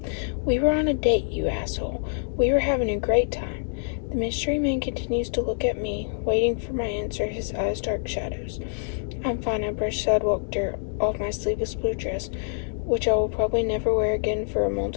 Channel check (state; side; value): silent; right; digital silence